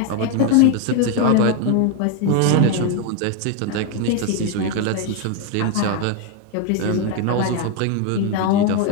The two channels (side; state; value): both; different; correlation 0.01